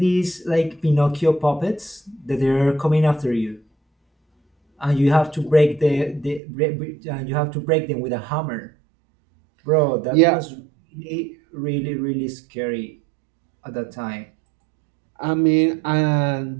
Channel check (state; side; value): drops out; left; at 6.4 s